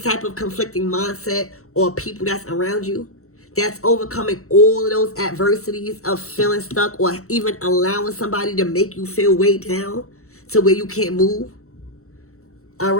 of conflicting mindset or people that's around you. That's overcoming all of those adversities of feeling stuck or even allowing somebody to make you feel way down to where you can't move. All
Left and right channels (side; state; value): right; late; 0.64 ms